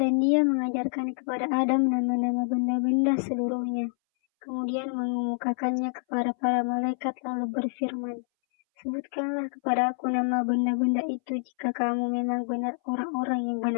Dan dia mengajarkan kepada Adam nama-nama benda-benda seluruhnya. Kemudian mengemukakannya kepada para malaikat lalu berfirman, "Sebutkanlah kepada aku nama benda-benda itu jika kamu memang benar orang-orang yang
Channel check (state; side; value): silent; right; 60 dB below the other